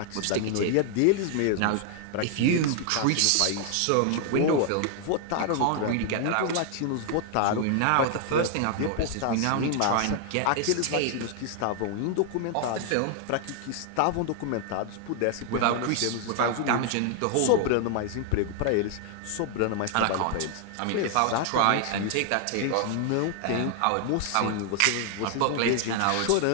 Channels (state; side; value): different; both; correlation 0.00